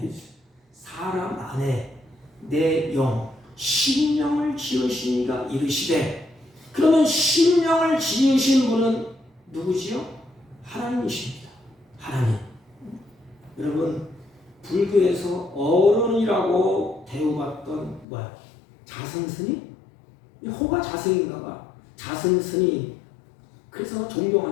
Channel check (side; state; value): right; drops out; at 18.1 s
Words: 사람 안에 내 영 심령을 지으신 이가 이르시되. 그러면 심령을 지으신 분은 누구지요? 하나님이십니다. 하나님. 여러분, 불교에서 어른이라고 대우받던 자승스님? 호가 자승인가 봐. 자승스님. 그래서